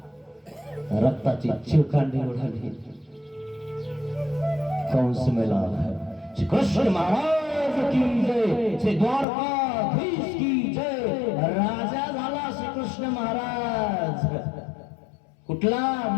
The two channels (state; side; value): drops out; right; at 9.2 s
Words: रक्ताची चिळकांडी उडाली. कंस मेला. कृष्ण महाराज की जय, श्री द्वारकाधीश की जय. राजा झाला श्रीकृष्ण महाराज. कुठला?